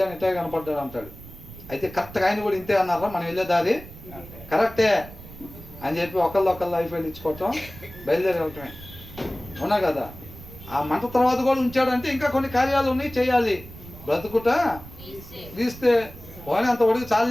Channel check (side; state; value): right; noise; rumble, 16 dB below the sound